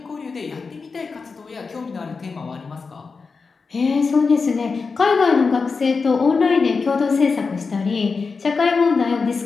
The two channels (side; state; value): right; quieter; 4.7 dB